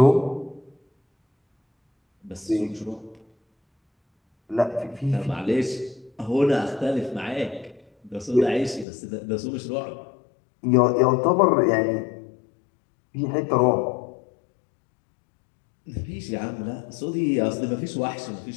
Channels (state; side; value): drops out; right; at 8.8 s